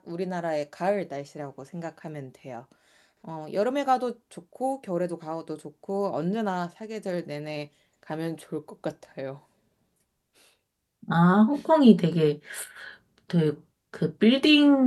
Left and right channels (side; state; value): both; identical; correlation 1.00